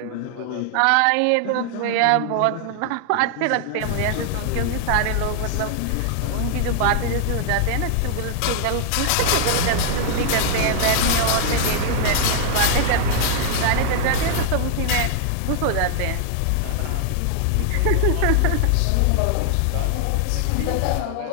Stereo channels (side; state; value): both; different; correlation 0.00